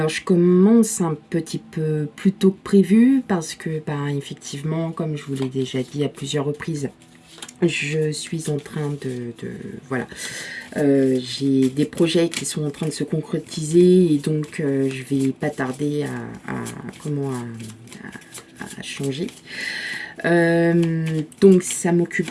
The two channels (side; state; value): both; identical; correlation 1.00